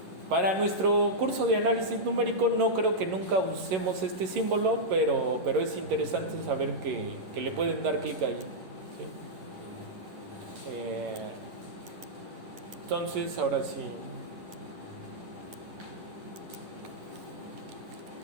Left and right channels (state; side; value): late; left; 11 ms